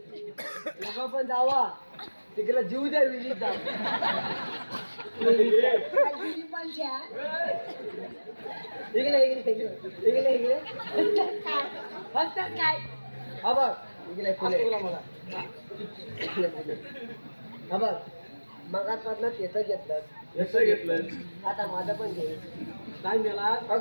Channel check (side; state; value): both; inverted; correlation -1.00